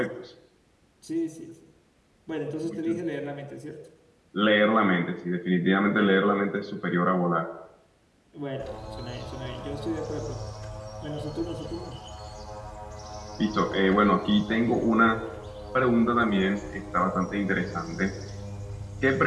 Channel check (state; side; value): identical; both; correlation 1.00